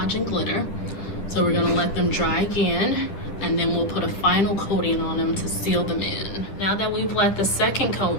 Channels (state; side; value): late; right; 9.9 ms